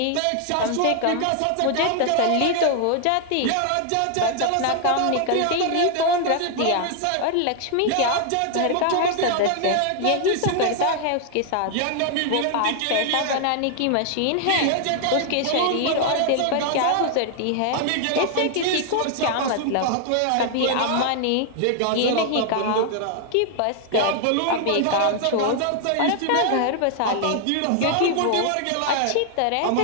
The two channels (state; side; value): different; both; correlation 0.00